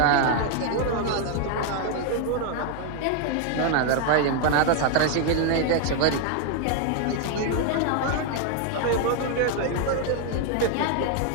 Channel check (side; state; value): both; different; correlation 0.00